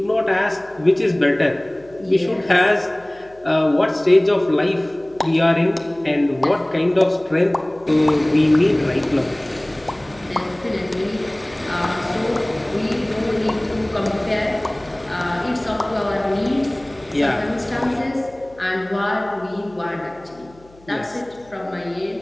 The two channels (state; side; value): noise; left; hum, 27 dB below the sound